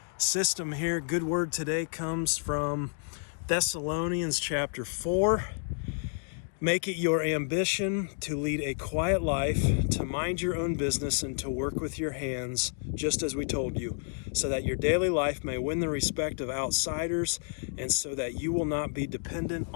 system here. Good word today comes from Thessalonians chapter 4. Make it your ambition to lead a quiet life, to mind your own business, and to work with your hands, just as we told you, so that your daily life may win the respect of outsiders, and so that you will not be dependent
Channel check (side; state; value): right; silent; digital silence